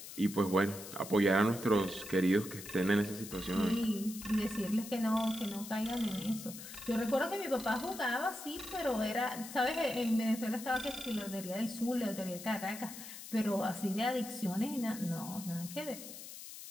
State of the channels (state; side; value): noise; left; hiss, 12 dB below the sound